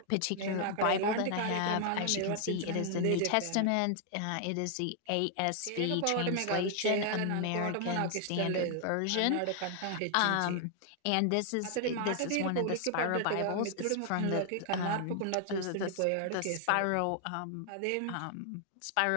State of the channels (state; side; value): different; both; correlation 0.00